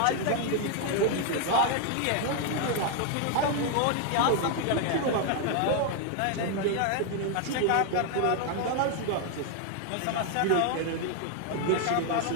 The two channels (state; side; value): different; both; correlation 0.01